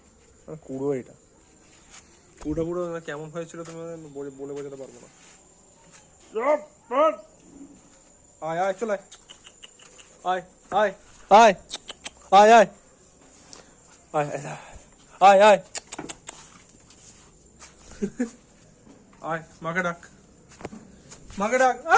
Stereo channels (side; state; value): both; identical; correlation 1.00